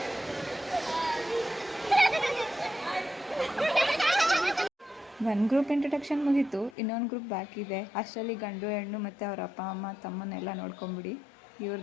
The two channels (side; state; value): right; drops out; at 6.8 s